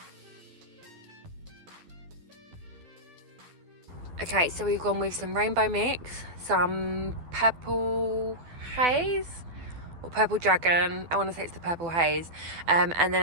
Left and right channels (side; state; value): left; late; 12 ms